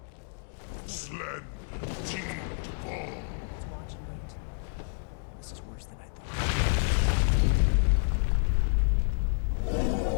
Slen, Teed Ball. Let's watch and wait. This is worse than I thought.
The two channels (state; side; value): silent; right; digital silence